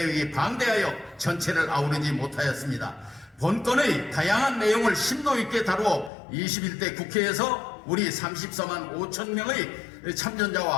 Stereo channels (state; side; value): drops out; right; at 6.1 s